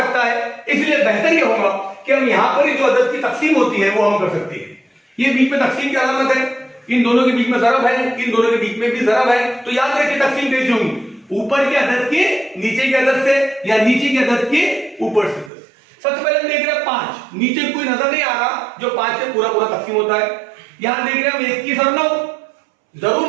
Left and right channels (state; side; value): drops out; left; at 15.5 s